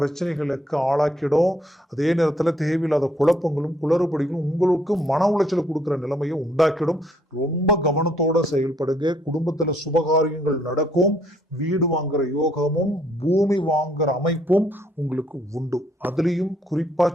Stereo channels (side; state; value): both; normal; correlation 0.67